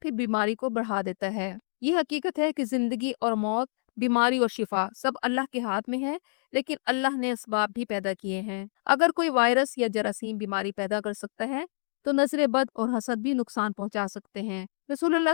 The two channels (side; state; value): right; silent; digital silence